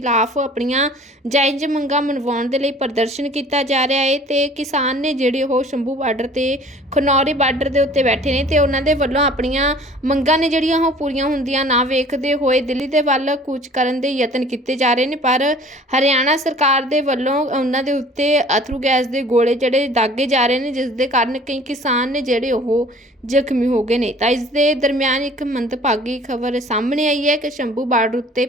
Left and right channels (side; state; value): both; normal; correlation 0.49